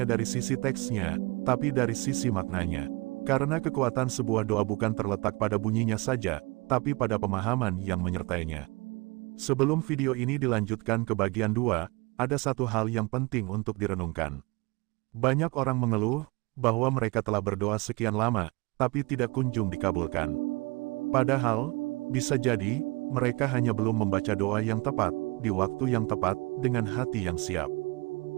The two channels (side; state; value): left; quieter; 25.9 dB